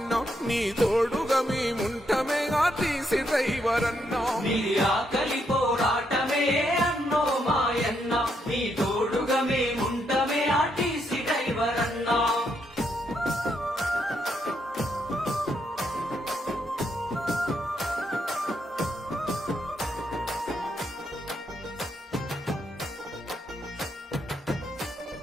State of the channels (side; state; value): both; normal; correlation 0.77